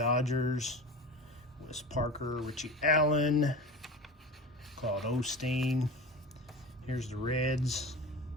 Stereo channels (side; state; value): both; normal; correlation 0.31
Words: Wes Parker, Richie Allen, Claude Osteen. Here's the Reds.